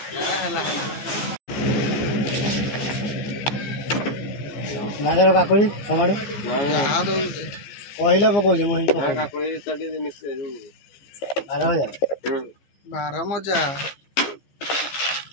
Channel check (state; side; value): late; right; 15 ms